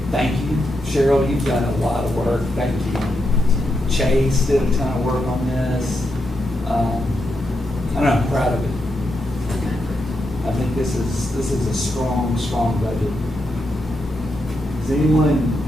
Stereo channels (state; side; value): normal; both; correlation 0.84